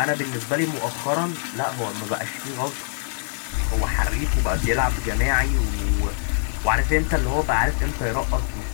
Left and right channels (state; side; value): silent; right; digital silence